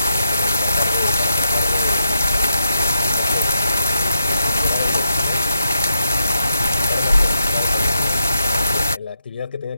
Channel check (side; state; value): both; inverted; correlation -0.82